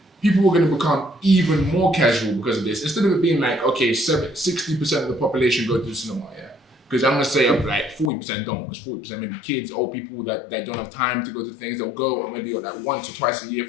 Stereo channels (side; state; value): right; drops out; at 8.1 s